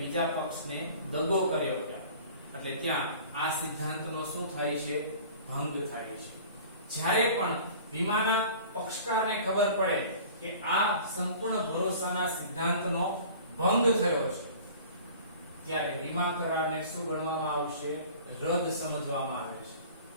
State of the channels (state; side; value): inverted; both; correlation -0.44